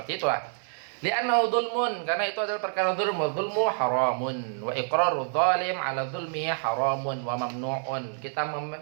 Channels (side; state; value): left; silent; digital silence